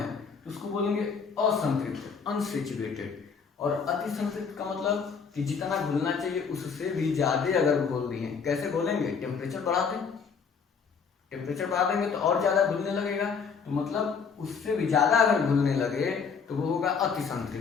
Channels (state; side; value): quieter; right; 5.9 dB